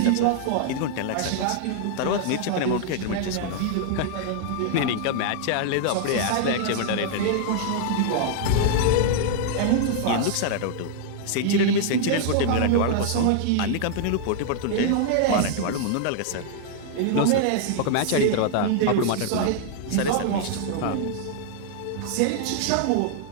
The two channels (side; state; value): both; different; correlation 0.00